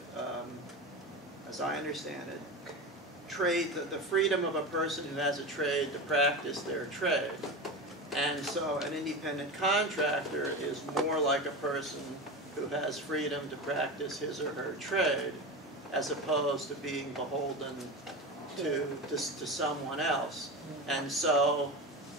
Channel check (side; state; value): both; normal; correlation 0.25